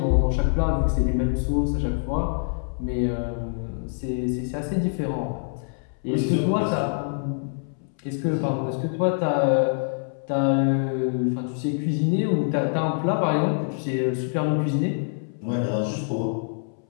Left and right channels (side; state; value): right; silent; 62 dB below the other